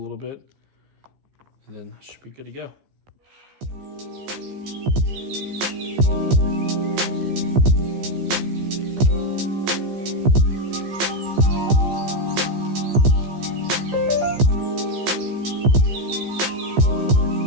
bit, and then I should be good to go.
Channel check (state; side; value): late; left; 15 ms